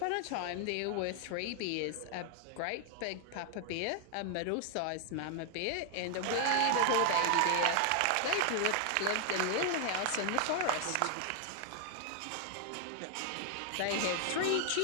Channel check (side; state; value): both; different; correlation 0.00